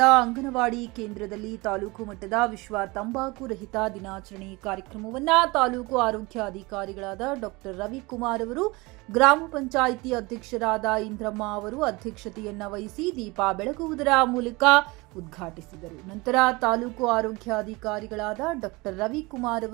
ಅಂಗನವಾಡಿ ಕೇಂದ್ರದಲ್ಲಿ ತಾಲೂಕು ಮಟ್ಟದ ವಿಶ್ವ ತಂಬಾಕು ರಹಿತ ದಿನಾಚರಣೆ ಕಾರ್ಯಕ್ರಮವನ್ನು ತಾಲೂಕು ಆರೋಗ್ಯಾಧಿಕಾರಿಗಳಾದ ಡಾಕ್ಟರ್ ರವಿಕುಮಾರ್ ಅವರು, ಗ್ರಾಮ ಪಂಚಾಯಿತಿ ಅಧ್ಯಕ್ಷರಾದ ಇಂದ್ರಮ್ಮ ಅವರು ಅಧ್ಯಕ್ಷತೆಯನ್ನ ವಹಿಸಿ ದೀಪ ಬೆಳಗುವುದರ ಮೂಲಕ ಉದ್ಘಾಟಿಸಿದರು. ನಂತರ ತಾಲೂಕು ಆರೋಗ್ಯಾಧಿಕಾರಿಗಳಾದ ಡಾಕ್ಟರ್ ರವಿಕುಮಾರ್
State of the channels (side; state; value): left; quieter; 24.0 dB